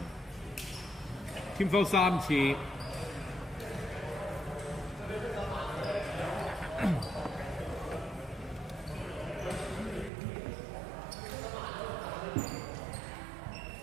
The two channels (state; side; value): drops out; left; at 10.1 s